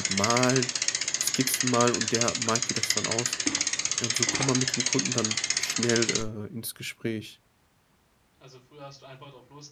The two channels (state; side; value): identical; both; correlation 1.00